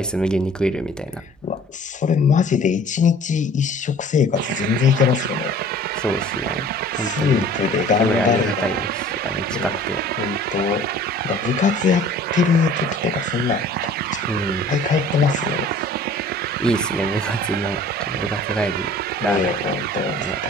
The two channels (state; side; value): normal; both; correlation 0.48